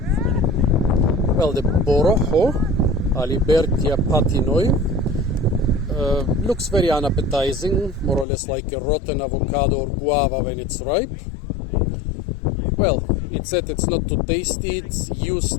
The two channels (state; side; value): drops out; right; at 8.2 s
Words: Well, the Borojo, Alibertia patinoi, looks very unappetizing, more or less like a rotten avocado or guava when it's ripe. Well, it said it's not too tasty, it's